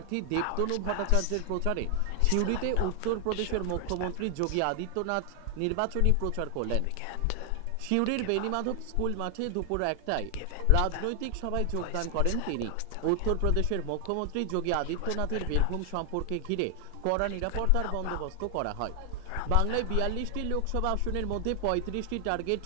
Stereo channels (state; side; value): different; both; correlation 0.00